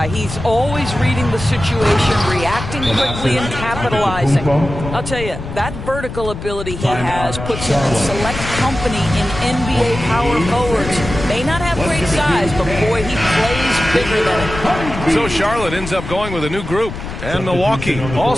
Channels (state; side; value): noise; left; rumble, 8 dB below the sound